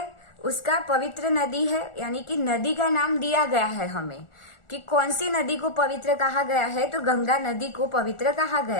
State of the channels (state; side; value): late; right; 1.4 ms